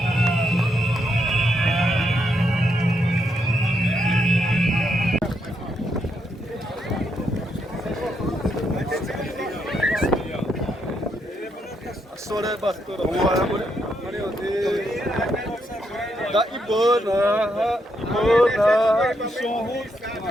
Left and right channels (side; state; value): both; normal; correlation 0.79